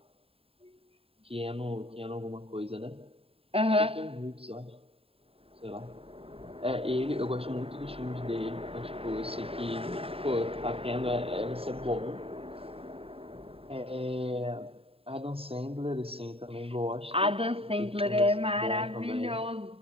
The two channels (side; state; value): left; late; 0.27 ms